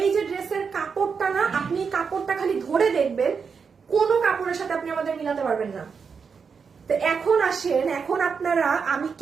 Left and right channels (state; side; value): quieter; left; 5.8 dB